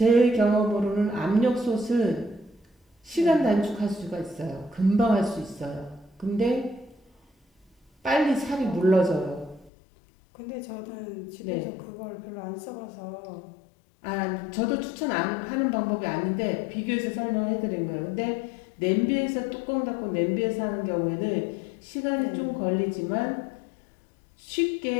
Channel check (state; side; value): drops out; right; at 9.7 s